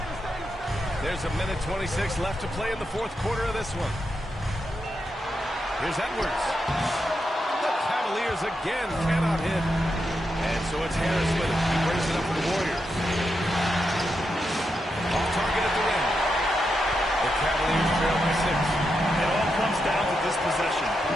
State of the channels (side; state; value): both; normal; correlation 0.85